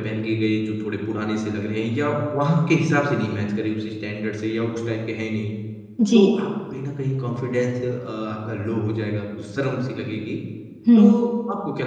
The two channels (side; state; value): both; identical; correlation 1.00